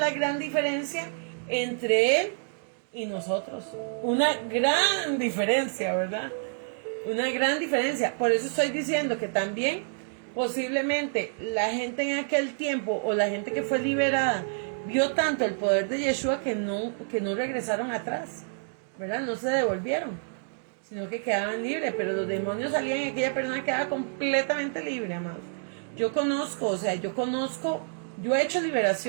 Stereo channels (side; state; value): left; silent; digital silence